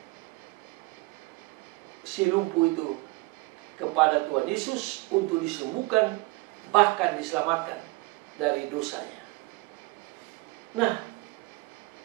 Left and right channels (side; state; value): left; quieter; 23.5 dB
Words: si lumpuh itu kepada Tuhan Yesus untuk disembuhkan, bahkan diselamatkan dari dosanya. Nah,